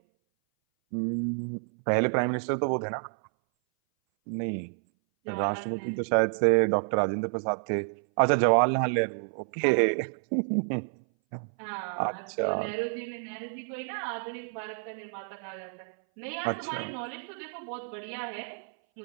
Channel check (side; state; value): left; silent; 58 dB below the other